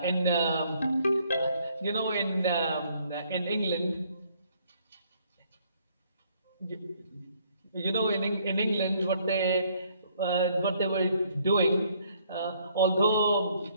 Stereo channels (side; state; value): both; inverted; correlation -0.65